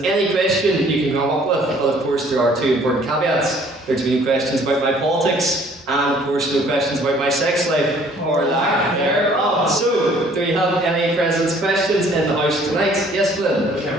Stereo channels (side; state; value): both; normal; correlation 0.57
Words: any question you can come up with. But of course, there are 2 important caveats. There are to be no questions about my politics, and of course, no questions about my sex life or lack thereof. So, do we have any President's questions in the House tonight? Yes, Flynn? We